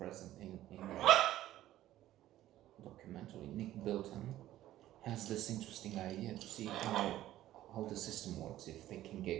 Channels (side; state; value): left; quieter; 13.9 dB